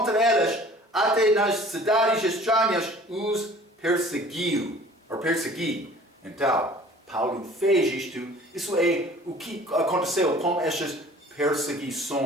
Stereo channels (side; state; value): both; normal; correlation 0.49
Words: eles, até nas cidades estranhas os persegui. Então, Paulo fez isto. Isso é o que aconteceu com estas